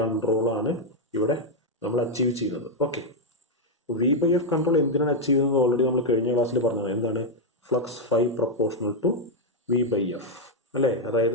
ആണ് ഇവിടെ നമ്മൾ achieve ചെയ്യുന്നത്. Okay, V by F control എന്തിനാണ് achieve ചെയ്യുന്നത് already നമ്മൾ കഴിഞ്ഞ ക്ലാസ്സിൽ പറഞ്ഞത്. എന്താണ്? Flux phi proportional to V by F അല്ലേ?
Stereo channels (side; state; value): both; normal; correlation 0.00